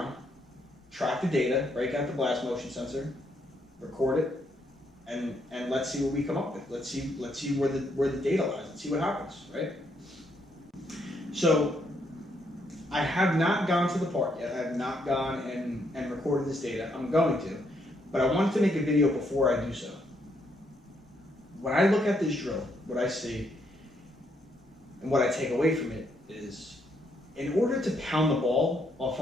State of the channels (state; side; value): normal; both; correlation 0.74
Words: track the data, break out the blast motion sensor, record it, and let's see what we come up with. Let's see where the data lies. Let's see what happens, right? So I have not gone to the park yet. I have not gone and recorded this data. I'm going to, but I wanted to make a video before I do so. When I look at this drill, what I see and what I take away from it is, in order to pound the ball off